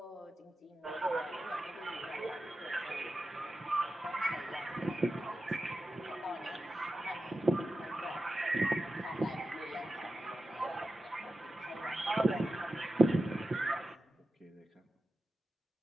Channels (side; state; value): both; normal; correlation 0.92